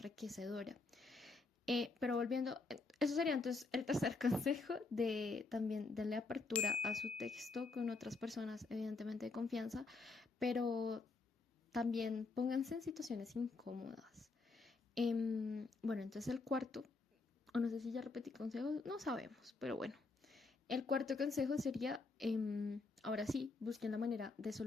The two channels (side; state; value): right; quieter; 3.8 dB